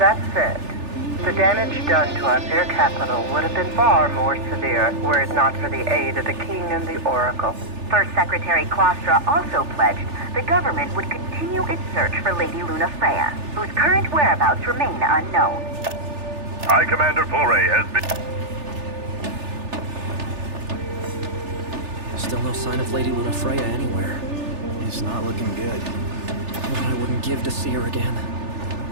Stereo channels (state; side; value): late; left; 3.4 ms